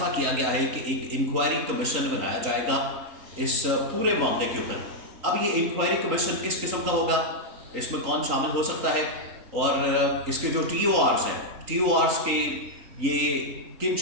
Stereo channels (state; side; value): late; left; 3.8 ms